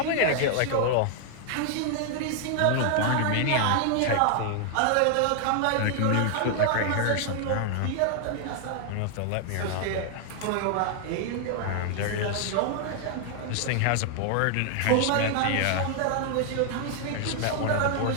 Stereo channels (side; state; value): both; different; correlation 0.00